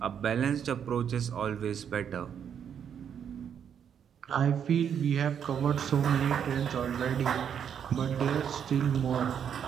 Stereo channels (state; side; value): quieter; left; 8.2 dB